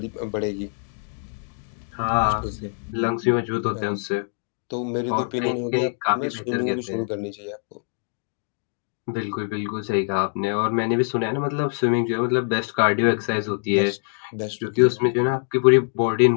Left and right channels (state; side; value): silent; right; digital silence